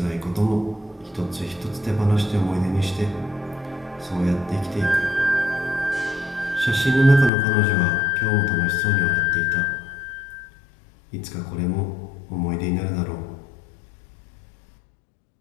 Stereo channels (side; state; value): right; drops out; at 7.3 s